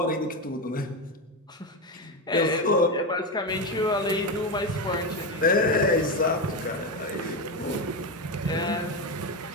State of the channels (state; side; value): normal; both; correlation 0.13